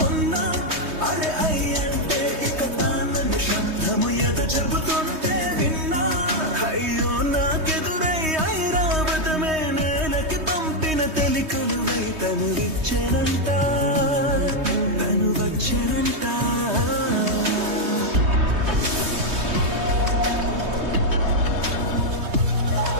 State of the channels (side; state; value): left; late; 3.2 ms